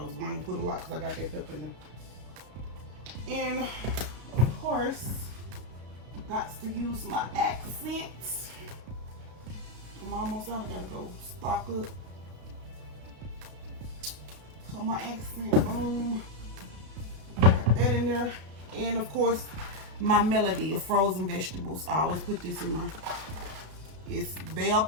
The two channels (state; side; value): late; left; 33 ms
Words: I don't put a lot because I got that pepper in there. And of course, got to use my accents. I'm almost out. I gotta go stock up. So my accent, boom. Got that in there. And of course, my melody of frozen vegetables. I always put this in my. It's bell